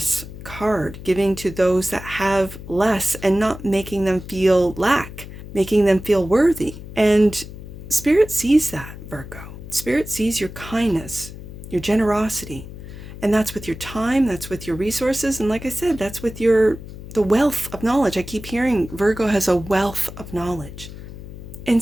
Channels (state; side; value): noise; left; hum, 13 dB below the sound